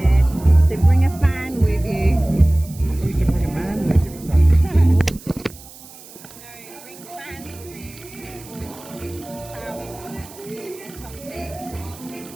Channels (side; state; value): right; noise; hiss, 19 dB below the sound